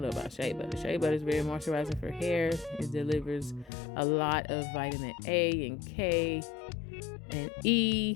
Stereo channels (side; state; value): right; drops out; at 3.7 s